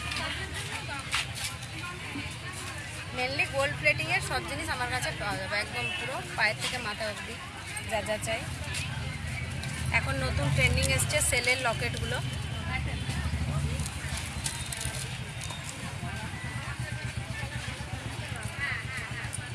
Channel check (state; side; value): identical; both; correlation 1.00